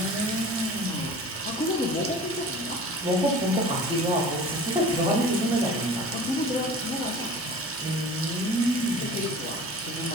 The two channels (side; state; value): left; noise; hum, 29 dB below the sound